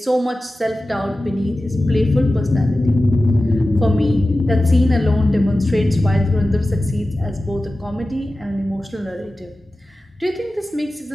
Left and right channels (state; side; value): normal; both; correlation 0.95